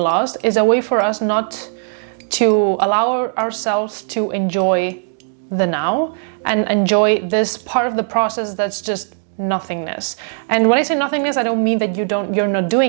is a way for us not to allow ourselves to enjoy the now and enjoy this part of the process that's just nothingness. And when I say nothingness, I don't mean that you're not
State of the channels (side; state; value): left; silent; digital silence